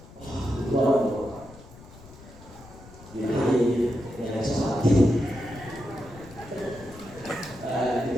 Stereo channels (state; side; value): noise; left; rumble, 19 dB below the sound